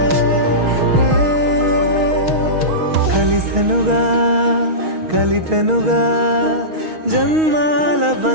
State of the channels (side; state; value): left; late; 6.3 ms